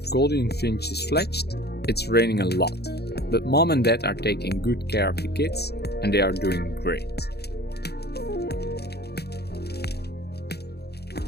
Gouldian Finches fledged, it's raining a lot, but mom and dad are taking good care of the kids and they are doing great.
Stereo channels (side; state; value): right; late; 0.47 ms